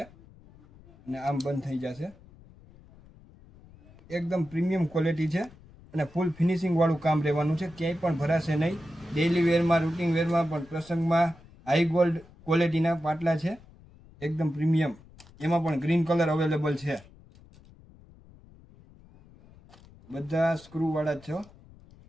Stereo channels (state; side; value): noise; left; rumble, 24 dB below the sound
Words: અને આમ બંધ થઈ જશે। એકદમ પ્રીમિયમ ક્વોલિટી છે અને ફૂલ ફિનિશિંગ વાળું કામ રહેવાનું છે, ક્યાંય પણ ભરાશે નહીં। ડેઇલી વેરમાં, રૂટિન વેરમાં પણ, પ્રસંગમાં હાઈ ગોલ્ડ ક્વોલિટીના પાટલા છે, એકદમ પ્રીમિયમ। એમાં પણ ગ્રીન કલર અવેલેબલ છે, બધા સ્ક્રૂવાળા જ છે,